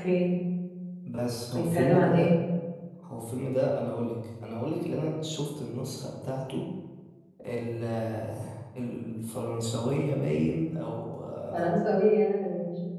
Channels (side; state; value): both; identical; correlation 1.00